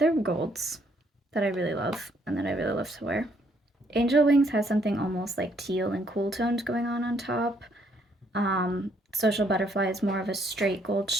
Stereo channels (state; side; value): normal; both; correlation 0.69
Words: golds that I really love and that I really love to wear. Angel Wings has something almost like teal and cool tones going on top. Social Butterfly is more of a straight gold